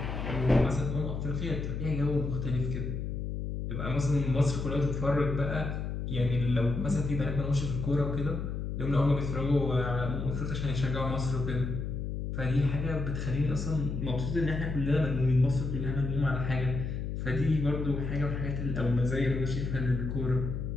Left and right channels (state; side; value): noise; left; hum, 4 dB below the sound